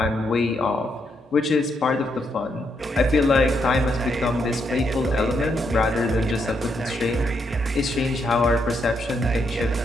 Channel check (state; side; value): normal; both; correlation 0.78